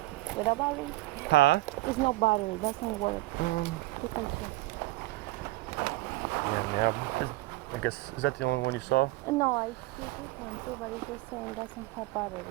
Without battery? Huh? There's no battery. Doesn't work. You can check. Yeah. I guess, is that the only one you saw? No, I see this one too, but it's the same. It doesn't have battery.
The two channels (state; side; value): quieter; left; 19.3 dB